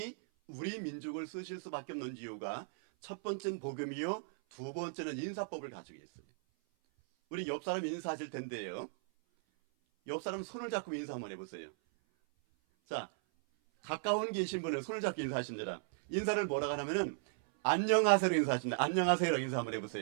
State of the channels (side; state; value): left; silent; 53 dB below the other